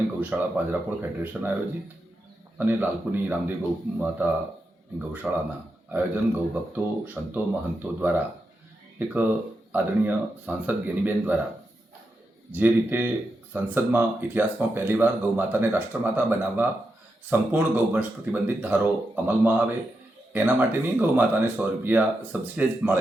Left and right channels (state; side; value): normal; both; correlation 0.86